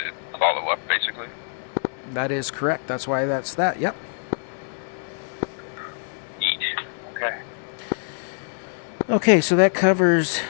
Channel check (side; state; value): right; silent; digital silence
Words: That is correct. That's why that's that. Yep. Neat. Okay. Okay, so that covers